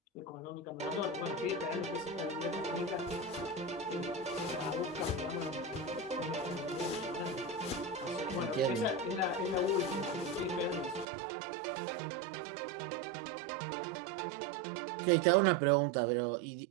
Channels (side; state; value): left; drops out; at 11.1 s